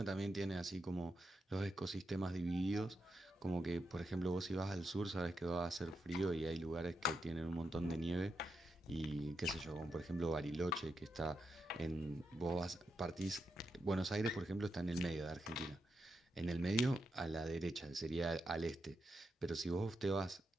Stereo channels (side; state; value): both; normal; correlation 0.84